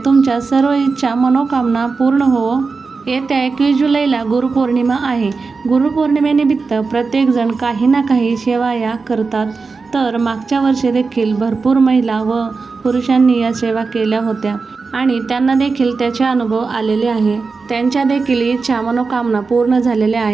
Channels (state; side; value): quieter; left; 4.4 dB